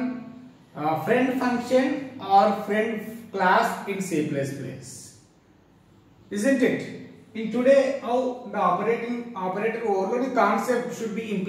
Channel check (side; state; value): both; identical; correlation 1.00